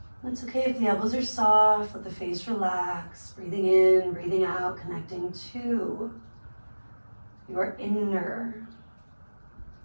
It's okay if the elbows are soft, let the face relax. Breathing in, breathing out, connecting to your inner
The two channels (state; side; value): inverted; both; correlation -1.00